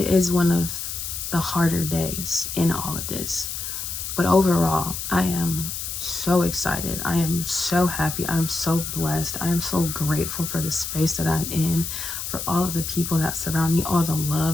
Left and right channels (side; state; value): left; noise; hiss, 5 dB below the sound